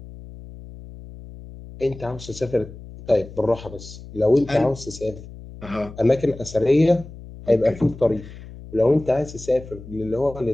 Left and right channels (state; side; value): noise; left; hum, 16 dB below the sound